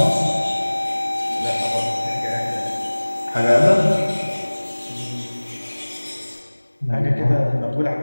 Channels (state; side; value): inverted; both; correlation -1.00